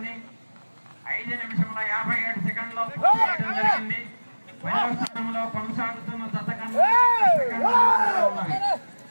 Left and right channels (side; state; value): both; inverted; correlation -1.00